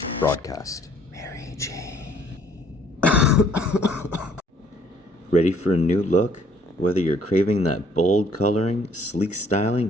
Mary Jane. Ready for a new look? Whether you're craving that bold coloring, sleek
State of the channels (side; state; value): both; normal; correlation 0.61